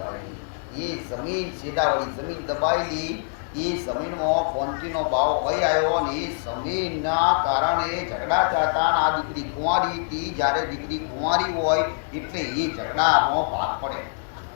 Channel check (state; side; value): silent; right; digital silence